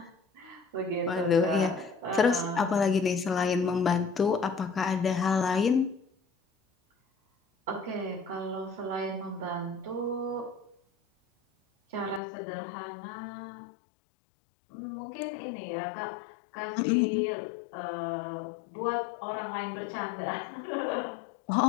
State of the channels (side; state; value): right; drops out; at 12.2 s